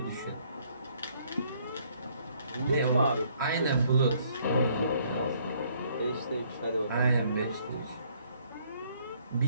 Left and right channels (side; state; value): both; inverted; correlation -0.65